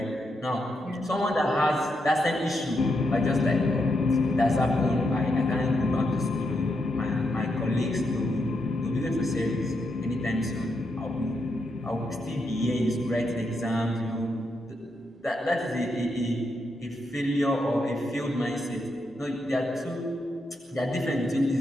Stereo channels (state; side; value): normal; both; correlation 0.82